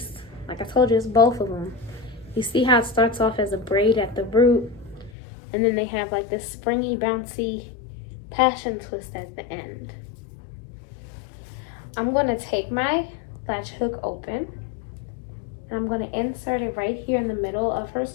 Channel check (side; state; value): right; drops out; at 5.1 s